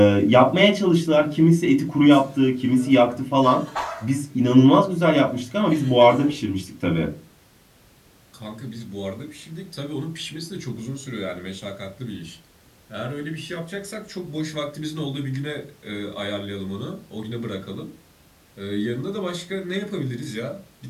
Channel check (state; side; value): identical; both; correlation 1.00